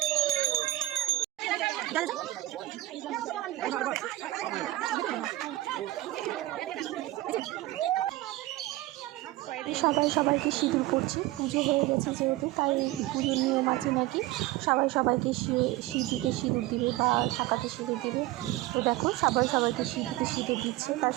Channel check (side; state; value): left; quieter; 17.2 dB